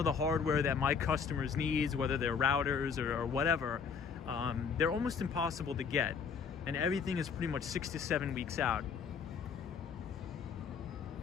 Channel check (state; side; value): quieter; right; 6.1 dB